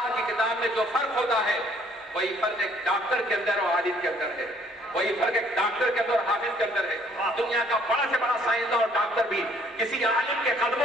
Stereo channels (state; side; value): normal; both; correlation 0.61